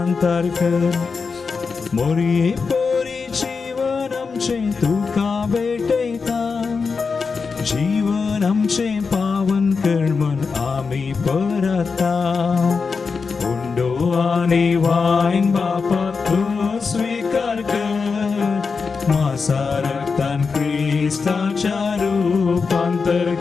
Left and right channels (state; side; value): quieter; right; 5.0 dB